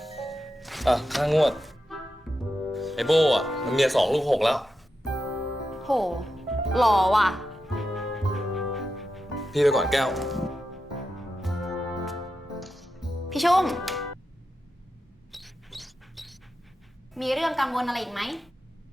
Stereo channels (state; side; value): normal; both; correlation 0.89